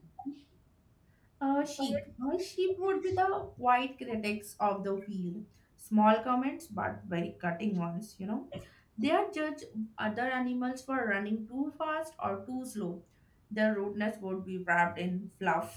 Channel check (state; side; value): identical; both; correlation 1.00